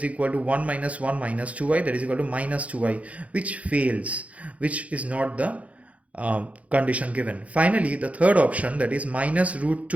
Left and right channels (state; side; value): late; left; 0.066 ms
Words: equal to 1 minus 1 minus 2i, that is equal to minus 2i, which fails, which is not the condition given. Finally, the third option, that is minus root